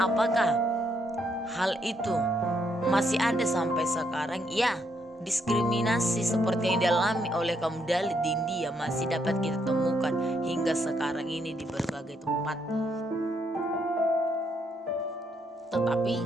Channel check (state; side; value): normal; both; correlation 0.75